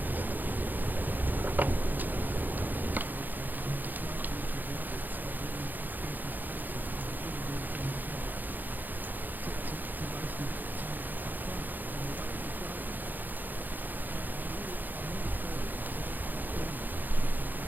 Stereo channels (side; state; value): left; late; 0.086 ms